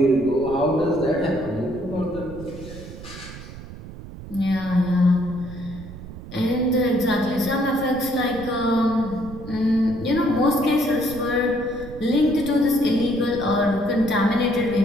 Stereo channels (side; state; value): right; noise; rumble, 14 dB below the sound